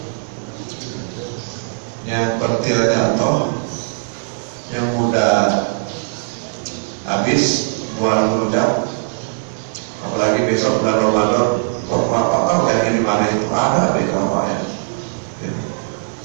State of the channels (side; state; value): left; silent; digital silence